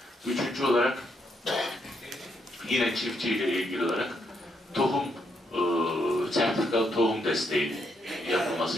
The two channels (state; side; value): normal; both; correlation 0.77